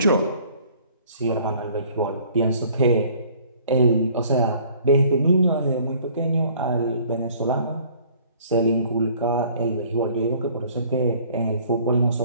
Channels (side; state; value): both; inverted; correlation -0.55